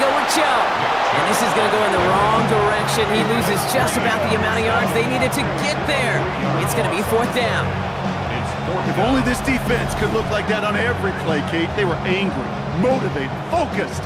go with Chubb. And this is going to go in the wrong direction. He loses just about the amount of yards they needed to get there. It's going to be 4th down. If only this defense could look like that on every play, Kate. They were angry, motivated, focused.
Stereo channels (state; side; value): identical; both; correlation 1.00